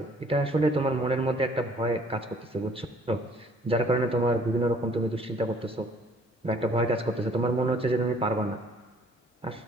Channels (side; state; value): both; normal; correlation 0.58